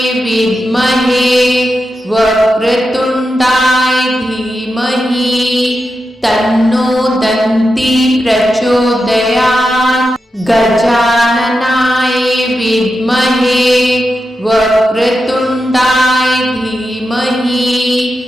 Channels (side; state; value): both; normal; correlation 0.89